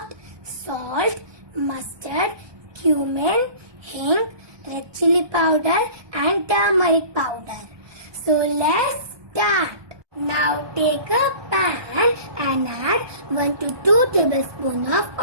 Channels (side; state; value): left; late; 1.2 ms